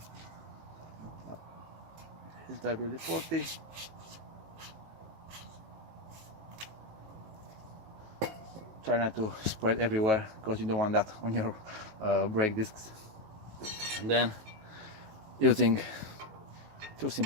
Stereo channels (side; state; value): left; late; 18 ms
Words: It's WD-40. try not to spread everywhere because you don't want that on your brake discs. And then using two